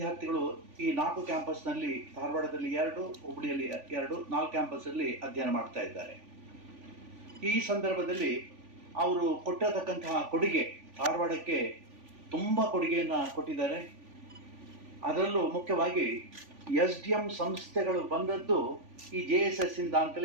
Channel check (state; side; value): late; left; 3.5 ms